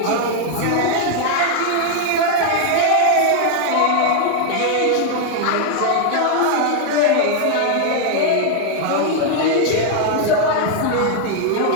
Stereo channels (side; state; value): both; different; correlation 0.00